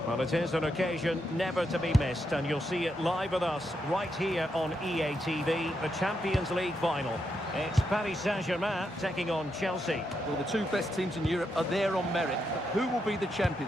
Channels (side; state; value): both; normal; correlation 0.82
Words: Well, it is an occasion never to be missed, and you'll see it live with us right here on EA TV, the Champions League final. It's Paris Saint-Germain taking on Chelsea. Well, the two best teams in Europe are there on merit. But who will be the